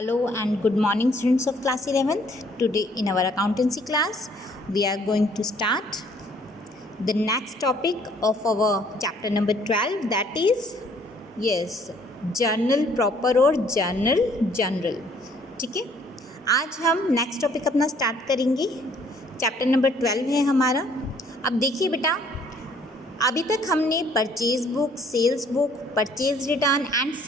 and good morning, students of class 11th. Today in our accountancy class we are going to start the next topic of our chapter number 12, that is journal proper और journal general. ठीक है, आज हम next topic अपना start करेंगे. Chapter number 12 है हमारा. अब देखिए बेटा, अभी तक हमने purchase book, sales book, purchase return and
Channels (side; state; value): both; normal; correlation 0.61